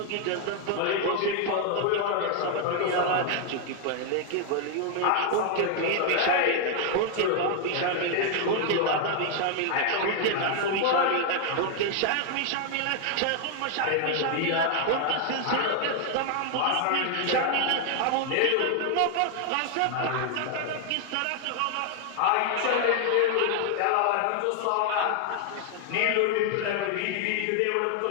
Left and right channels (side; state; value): both; different; correlation 0.00